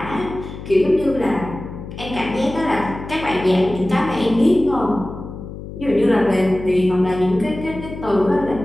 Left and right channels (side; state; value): left; noise; hum, 11 dB below the sound